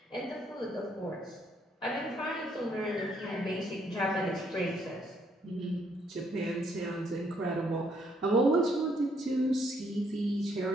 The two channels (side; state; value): both; normal; correlation 0.70